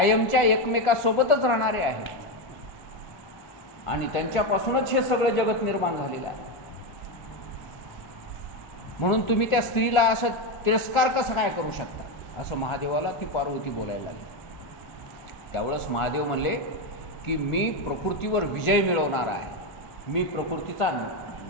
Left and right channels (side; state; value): right; late; 1.4 ms